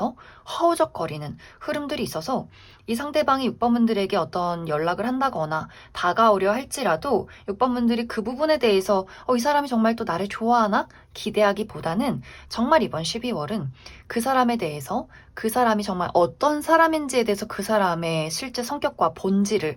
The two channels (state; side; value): identical; both; correlation 1.00